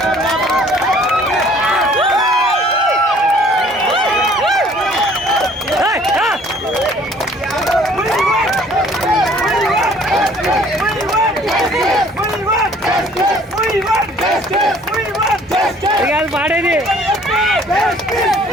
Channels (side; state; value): both; normal; correlation 0.56